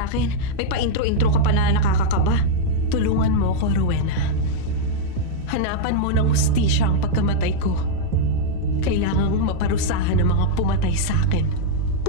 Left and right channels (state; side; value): different; both; correlation -0.01